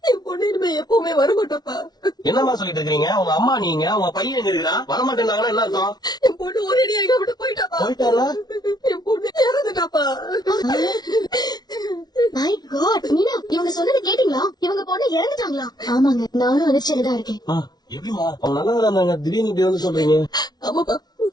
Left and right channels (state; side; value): late; right; 0.19 ms